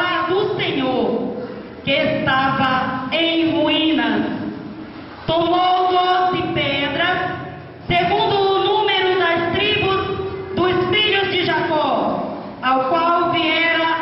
do Senhor, que estava em ruínas. Tomou 12 pedras, segundo o número das tribos dos filhos de Jacó, ao qual viera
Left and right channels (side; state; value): both; identical; correlation 1.00